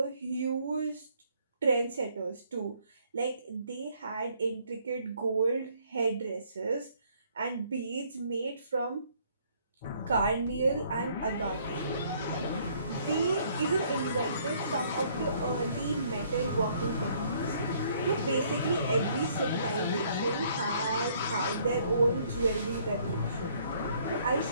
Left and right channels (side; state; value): both; inverted; correlation -0.63